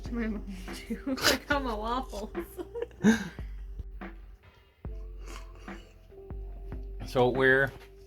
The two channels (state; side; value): identical; both; correlation 1.00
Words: to my mom too. Like I'm a waffles. So we're